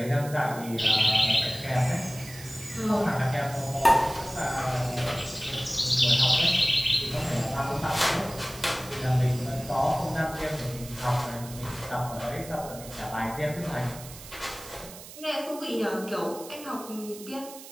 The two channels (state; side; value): noise; right; hiss, 15 dB below the sound